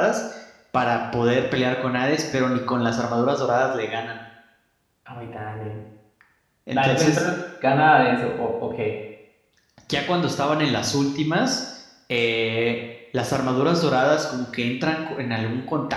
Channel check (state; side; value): identical; both; correlation 1.00